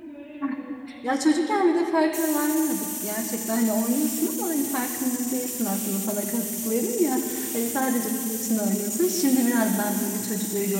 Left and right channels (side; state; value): both; identical; correlation 1.00